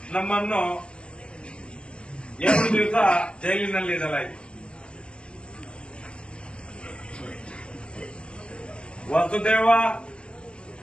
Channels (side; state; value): right; late; 0.051 ms